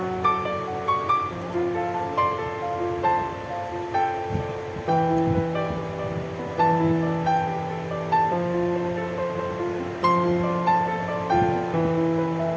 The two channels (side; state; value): both; identical; correlation 1.00